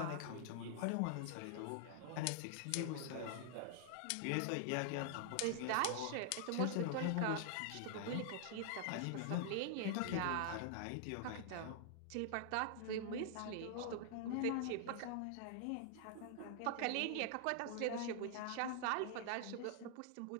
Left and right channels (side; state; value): both; different; correlation 0.00